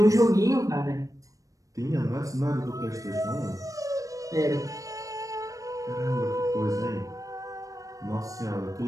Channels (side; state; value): left; late; 0.16 ms